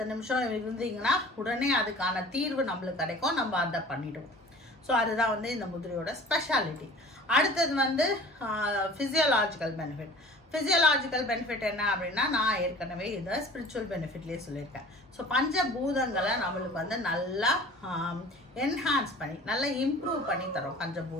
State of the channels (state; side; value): normal; both; correlation 0.44